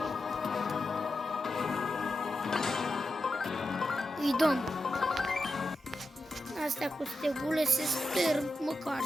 Îi dăm. Astea cu stegule se sper măcar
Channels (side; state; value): both; normal; correlation 0.89